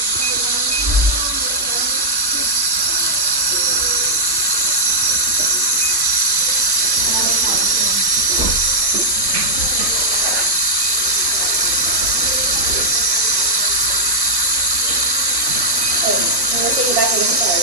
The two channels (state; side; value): late; left; 1.1 ms